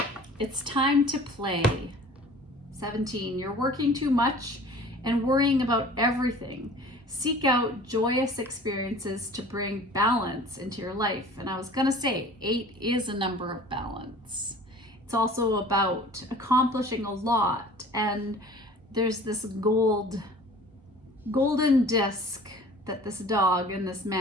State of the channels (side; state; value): both; normal; correlation 0.45